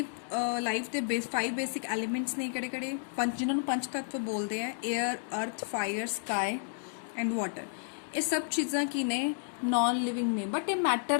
life ਦੇ 5 basic elements ਨੇ ਕਿਹੜੇ ਪੰਜ ਜਿਨ੍ਹਾਂ ਨੂੰ ਪੰਜ ਤੱਤਵ ਬੋਲਦੇ ਆ 에ਅਰ ਅਰਥ ਫਾਇਰ ਸਕਾਈ ਐਂਡ ਵਾਟਰ। ਇਹ ਸਭ ਚੀਜ਼ਾਂ ਕੀ ਨੇ ਨॉन ਲਿਵਿੰਗ ਨੇ ਬਟ ਇਹ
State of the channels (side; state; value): right; silent; digital silence